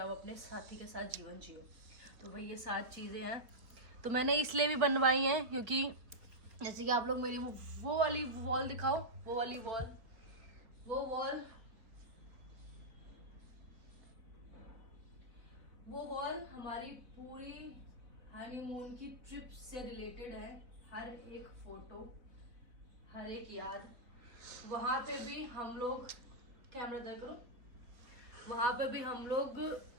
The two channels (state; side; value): late; left; 3.8 ms